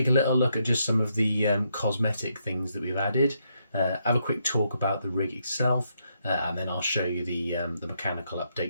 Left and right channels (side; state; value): both; inverted; correlation -0.78